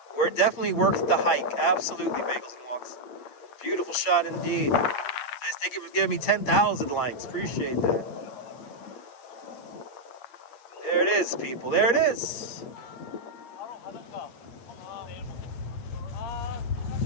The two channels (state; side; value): late; right; 8.5 ms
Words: We're definitely worth the hike. Absolutely, Bagels and Walks. Beautiful shot indeed. Thank you for giving me 10,000 likes. Appreciate that. There it is, people. There it is.